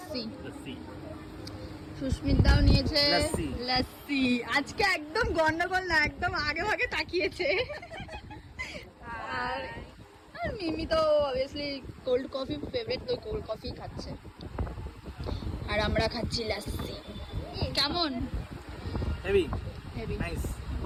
সুস্মিতাও নিয়েছে লস্যি। আজকে একদম গন্ডগোল না, একদম আগে ভাগে তাকিয়েছে। আর মিমি তো অবভিয়াসলি কোল্ড কফি ফেভারিট, তো কোল্ড কফি খাচ্ছে। আর আমরা খাচ্ছি লস্যি। কেমন? Heavy heavy. নাইস।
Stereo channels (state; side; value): identical; both; correlation 1.00